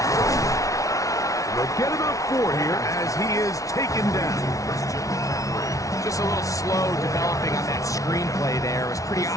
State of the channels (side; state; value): right; late; 0.16 ms